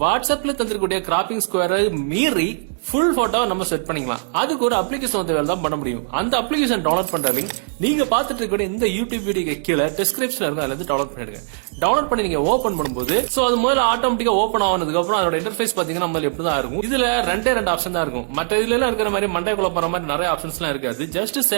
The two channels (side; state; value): left; silent; digital silence